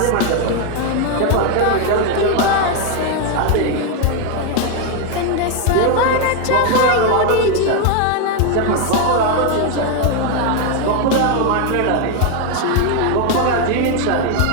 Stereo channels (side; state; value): both; different; correlation 0.01